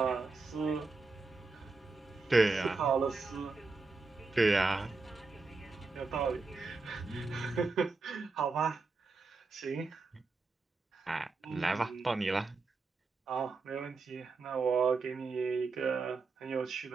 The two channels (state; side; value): quieter; left; 4.0 dB